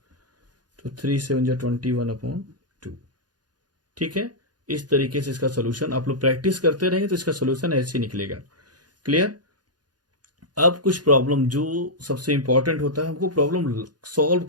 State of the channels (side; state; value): left; late; 0.69 ms